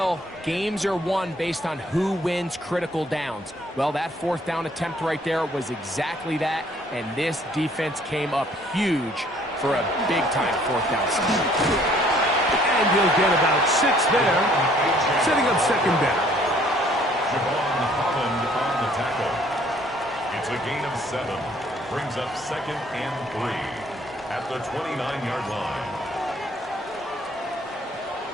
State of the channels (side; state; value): both; normal; correlation 0.60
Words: games are won based on who wins critical downs. Well, that fourth down attempt right there was exactly that, and this defense came up huge for a big-time fourth down. And he'll get about 6 there, setting up second down. Javon Holland on the tackle. It's a gain of 7. Brings up second and 3 at the 29-yard line.